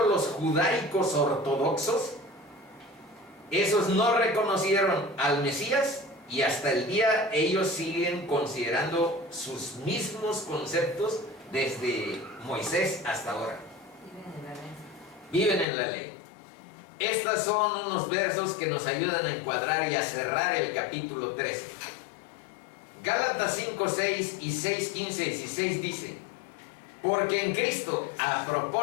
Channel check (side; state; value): right; drops out; at 15.7 s